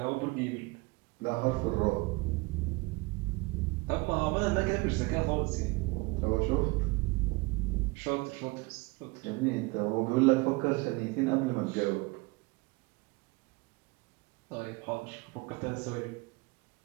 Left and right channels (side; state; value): left; quieter; 25.2 dB